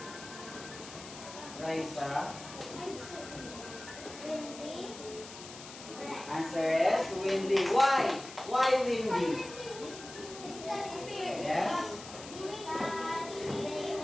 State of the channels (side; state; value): left; noise; hiss, 14 dB below the sound